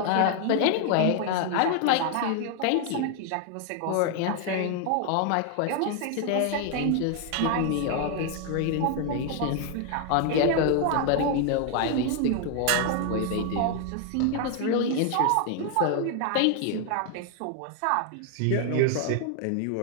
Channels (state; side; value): different; both; correlation 0.00